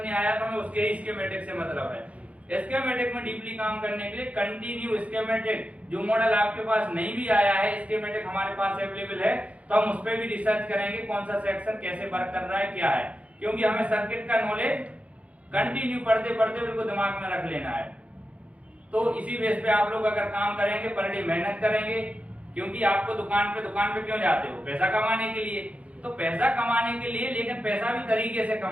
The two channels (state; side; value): late; left; 0.065 ms